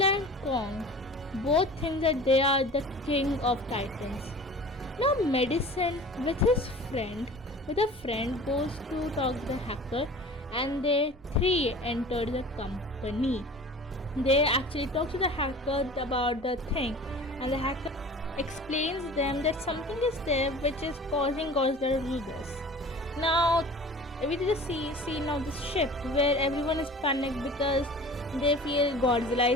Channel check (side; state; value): both; normal; correlation 0.41